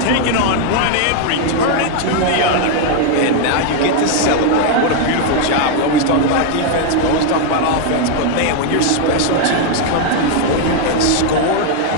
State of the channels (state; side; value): different; both; correlation 0.00